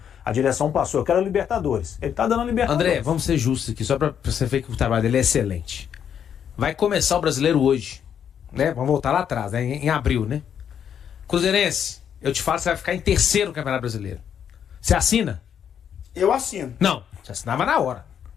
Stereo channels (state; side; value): quieter; right; 8.6 dB